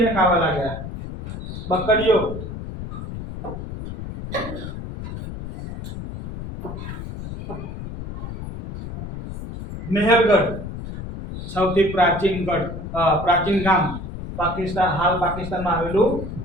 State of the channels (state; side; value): noise; left; rumble, 8 dB below the sound